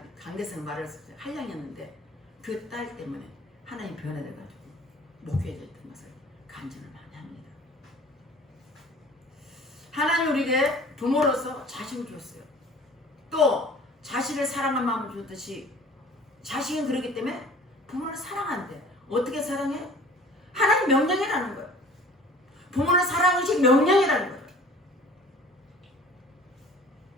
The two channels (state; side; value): normal; both; correlation 0.47